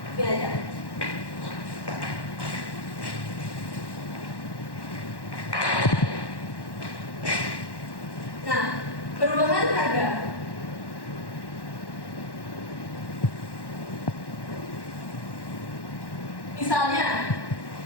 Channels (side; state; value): right; late; 1.1 ms